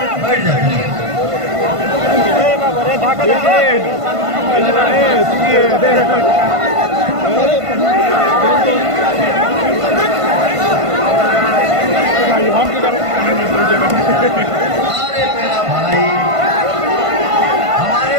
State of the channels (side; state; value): left; late; 1.5 ms